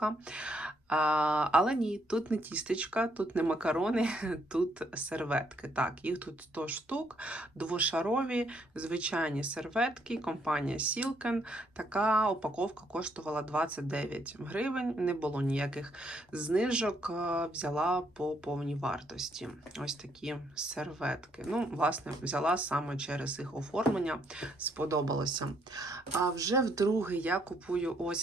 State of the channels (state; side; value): normal; both; correlation 0.72